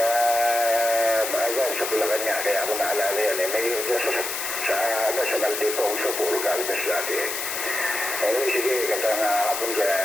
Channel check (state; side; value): noise; left; hiss, 4 dB below the sound